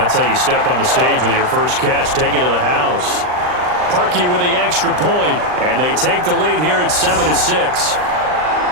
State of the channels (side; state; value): left; late; 39 ms